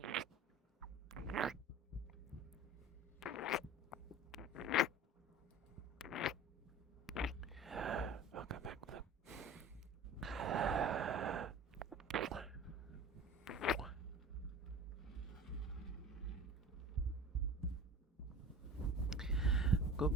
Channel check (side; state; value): both; normal; correlation 0.38